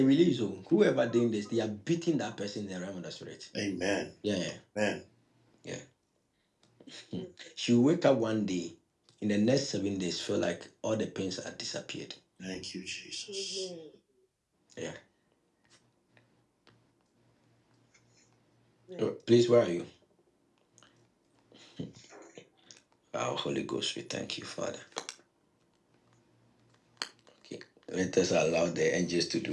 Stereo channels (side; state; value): both; identical; correlation 1.00